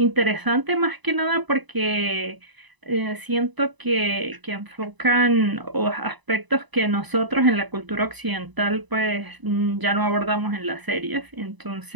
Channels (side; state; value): left; late; 1.0 ms